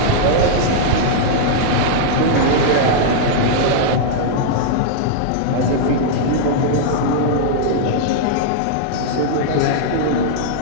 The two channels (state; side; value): different; both; correlation -0.01